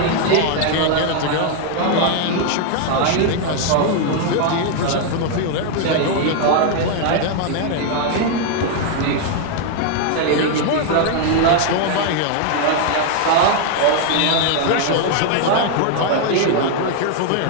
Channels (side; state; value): both; different; correlation 0.00